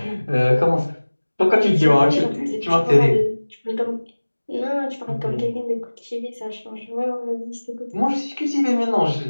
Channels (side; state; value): both; inverted; correlation -1.00